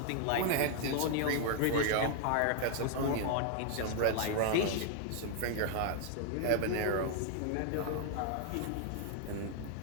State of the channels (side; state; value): both; different; correlation 0.00